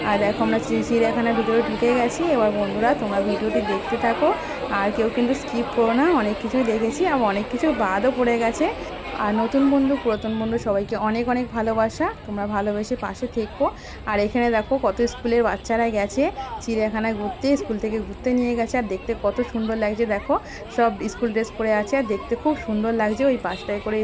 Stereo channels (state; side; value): identical; both; correlation 1.00